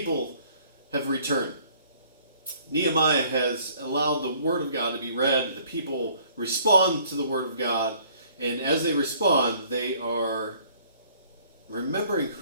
have returned. Nehemiah has allowed the Word of God to be read, the people respond to the Word of God, and as they respond, they are remembering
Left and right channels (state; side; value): inverted; both; correlation -0.58